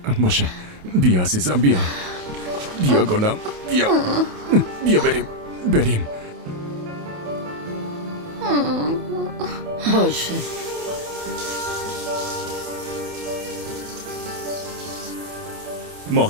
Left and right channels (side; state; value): left; late; 28 ms